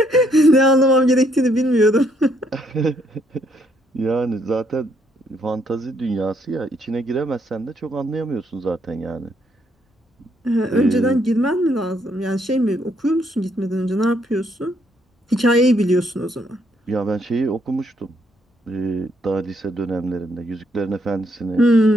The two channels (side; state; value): both; normal; correlation 0.71